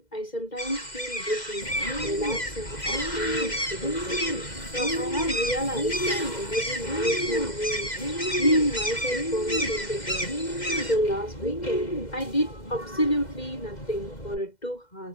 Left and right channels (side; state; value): right; late; 2.0 ms